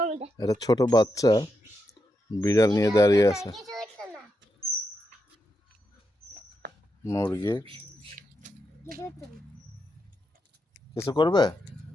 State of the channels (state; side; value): normal; both; correlation 0.84